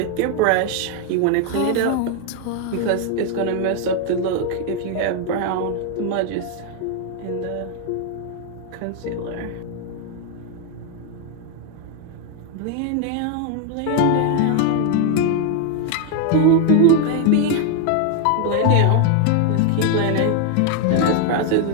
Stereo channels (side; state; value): both; different; correlation 0.01